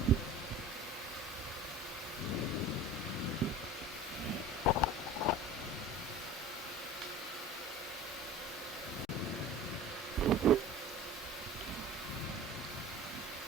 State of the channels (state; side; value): normal; both; correlation 0.38